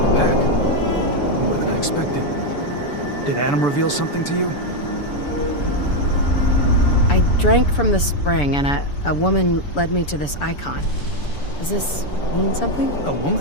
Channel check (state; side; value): late; right; 6.9 ms